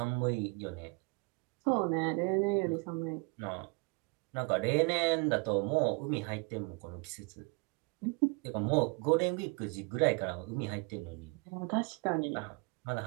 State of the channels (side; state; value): left; quieter; 29.6 dB